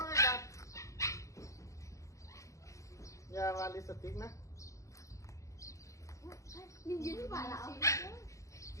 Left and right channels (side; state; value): right; late; 0.15 ms